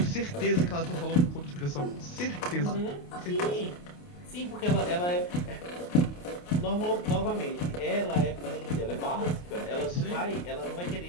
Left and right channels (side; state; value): right; late; 28 ms